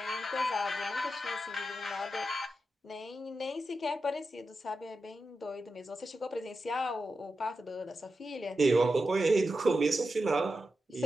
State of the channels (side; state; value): both; normal; correlation 0.89